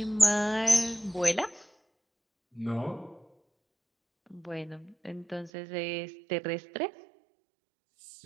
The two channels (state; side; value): drops out; left; at 5.5 s